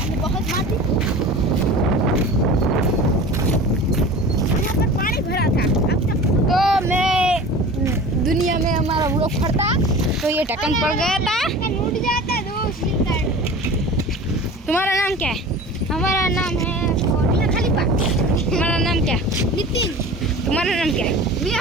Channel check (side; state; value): both; normal; correlation 0.38